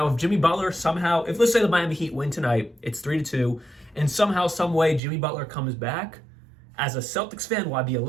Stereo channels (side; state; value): left; drops out; at 5.0 s